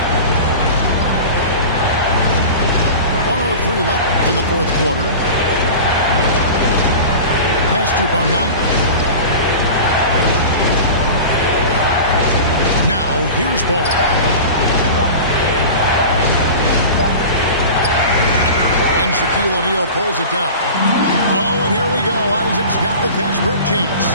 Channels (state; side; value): inverted; both; correlation -0.34